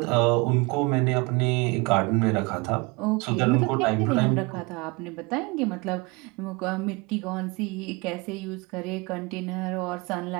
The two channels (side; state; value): left; quieter; 26.5 dB